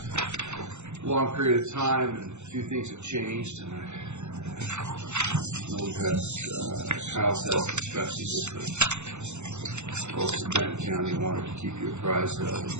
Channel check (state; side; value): late; left; 0.83 ms